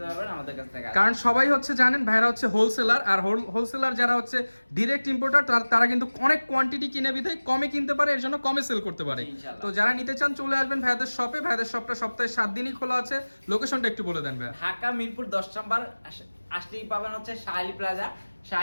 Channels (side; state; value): both; inverted; correlation -1.00